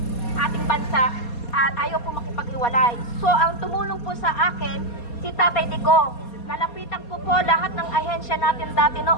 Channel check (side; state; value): right; late; 4.2 ms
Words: ating bansa at ayaw po makipag-iwalay. So, ang tumulong po sa akin, si Tatay Digong. Nalapitan ko po lahat ng ahensya natin dati